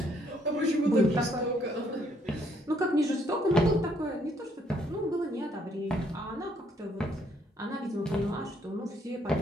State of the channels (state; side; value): normal; both; correlation 0.68